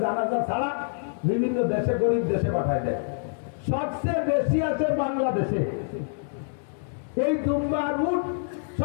জানাজা ছাড়া বিভিন্ন দেশে, গরিব দেশে পাঠায় দেয়। সবচেয়ে বেশি আছে বাংলাদেশে এই দুম্বা আর উট,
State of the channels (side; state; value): right; silent; digital silence